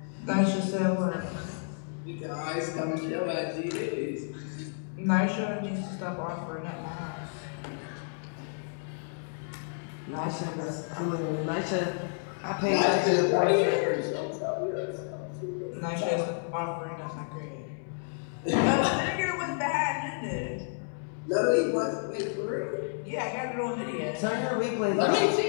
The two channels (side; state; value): right; silent; digital silence